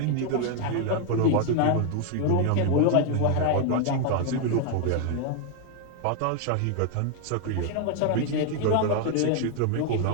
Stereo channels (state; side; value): different; both; correlation 0.00